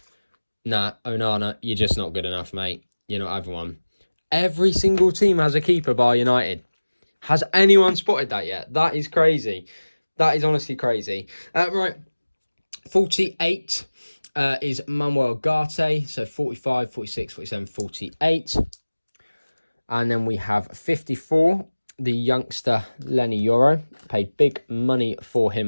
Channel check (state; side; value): inverted; both; correlation -1.00